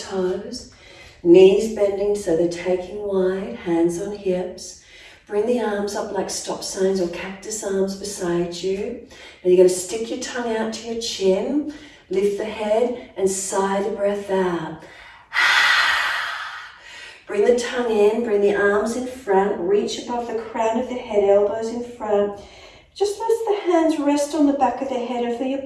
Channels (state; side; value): identical; both; correlation 1.00